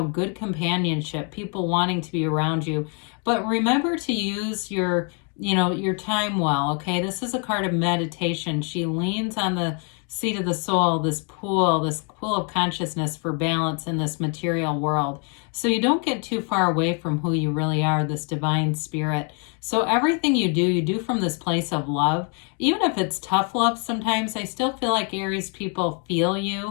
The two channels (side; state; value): right; quieter; 38.2 dB